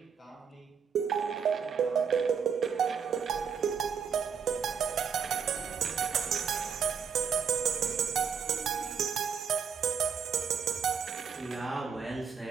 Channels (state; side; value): quieter; left; 6.8 dB